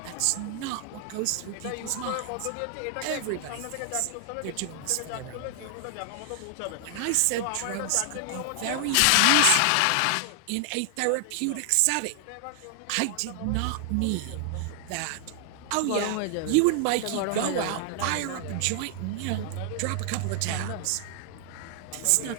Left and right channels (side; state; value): both; different; correlation 0.00